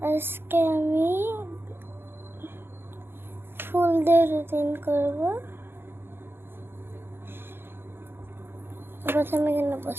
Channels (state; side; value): late; left; 0.11 ms